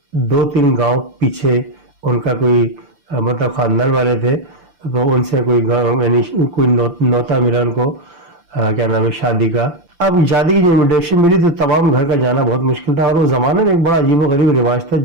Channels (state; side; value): late; left; 5.8 ms